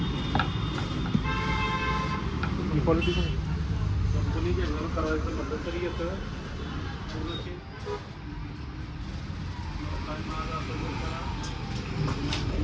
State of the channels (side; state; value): both; identical; correlation 1.00